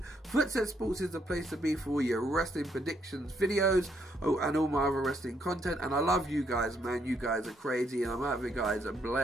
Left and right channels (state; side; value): normal; both; correlation 0.73